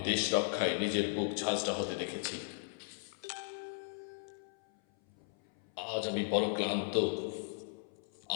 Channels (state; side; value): silent; right; 53 dB below the other